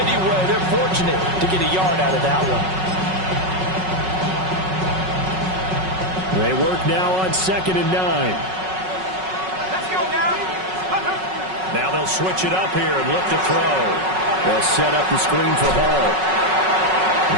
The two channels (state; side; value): late; left; 5.4 ms